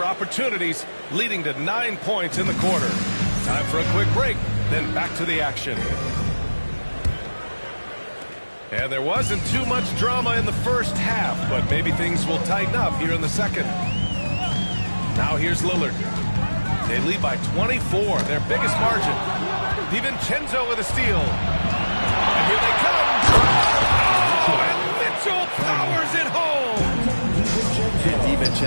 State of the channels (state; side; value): inverted; both; correlation -1.00